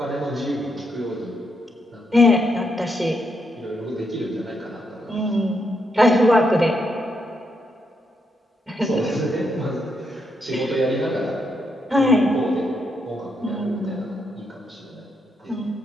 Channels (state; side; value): normal; both; correlation 0.80